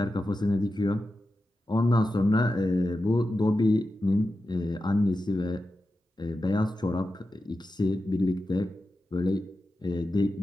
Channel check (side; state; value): both; normal; correlation 0.91